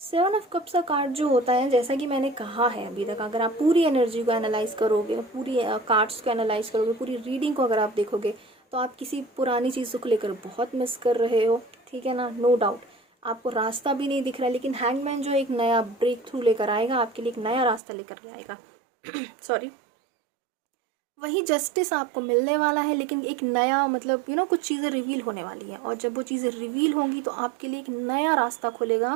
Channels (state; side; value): drops out; left; at 17.8 s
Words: 7 of cups का कार्ड जो होता है, जैसा कि मैंने कहा है अभी तक, अगर आप पूरी एनर्जी को एनालाइज करोगे, पूरी कार्ड्स को एनालाइज करोगे, पूरी रीडिंग को अगर आप देखोगे, तो आप किसी पुरानी चीज़ों को लेकर बहुत मिस कर रहे हो, ठीक है ना, नो डाउट। आपको रास्ता भी नहीं दिख रहा है, लेकिन हैंगमैन जो एक नया ब्रेक थ्रू लेकर आएगा, आपके लिए एक नया रास्ता लेकर के आएगा। सॉरी, वही जस्टिस आपको मिलने वाला है, लेकिन एक नया मतलब कुछ चीज़ें रिवील होने वाली है, और जब वो चीज़ें रिवील होंगी तो आपके लिए एक नया रास्ता